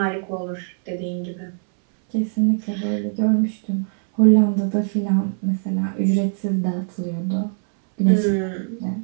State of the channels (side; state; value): left; silent; 64 dB below the other